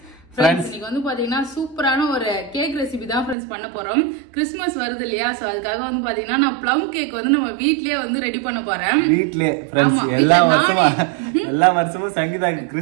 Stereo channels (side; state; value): left; drops out; at 3.4 s